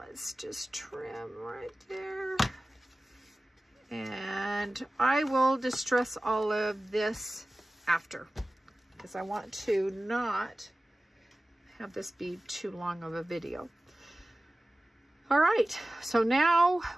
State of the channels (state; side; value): normal; both; correlation 0.97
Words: just trim right there. And I will distress all of this after, because I want to not have this be too long of a video. All right, so now